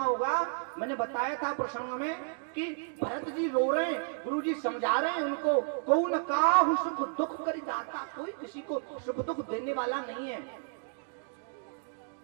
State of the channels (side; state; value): left; silent; digital silence